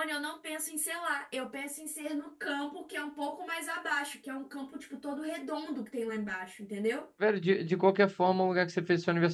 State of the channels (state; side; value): identical; both; correlation 1.00